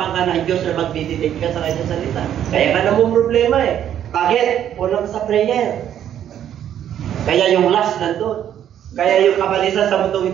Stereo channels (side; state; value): left; quieter; 10.3 dB